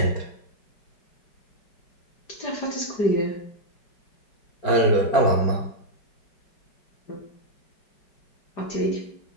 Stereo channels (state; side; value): late; right; 5.0 ms